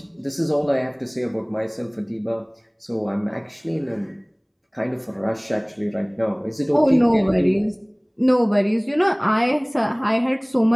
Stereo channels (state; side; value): identical; both; correlation 1.00